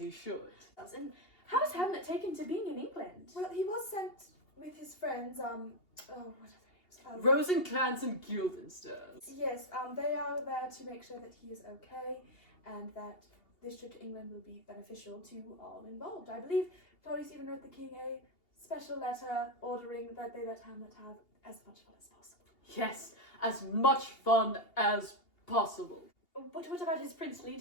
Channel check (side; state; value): right; late; 2.8 ms